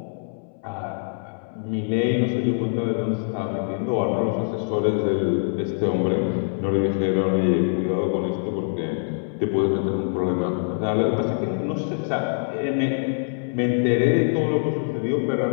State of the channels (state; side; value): silent; right; 63 dB below the other